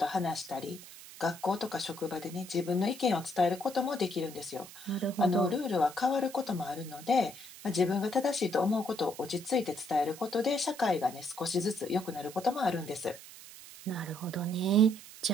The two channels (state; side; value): noise; right; hiss, 16 dB below the sound